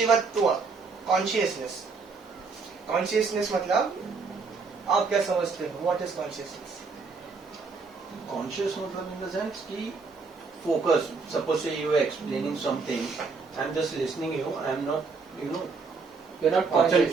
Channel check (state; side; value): quieter; left; 4.5 dB